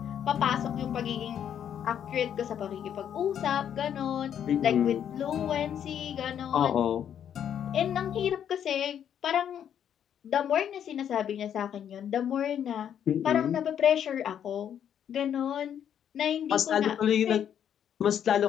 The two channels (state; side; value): quieter; right; 9.2 dB